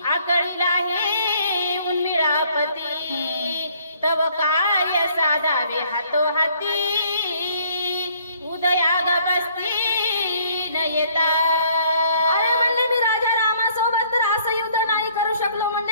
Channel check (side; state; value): both; inverted; correlation -0.62